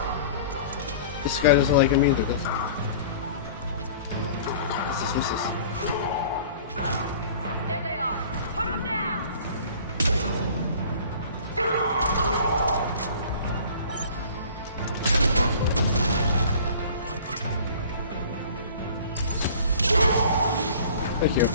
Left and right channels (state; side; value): inverted; both; correlation -0.46